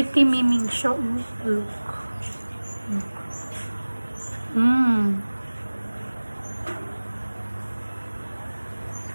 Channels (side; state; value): both; inverted; correlation -1.00